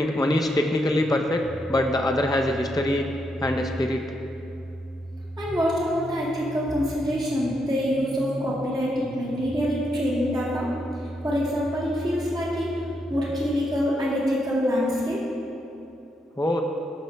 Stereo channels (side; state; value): both; normal; correlation 0.80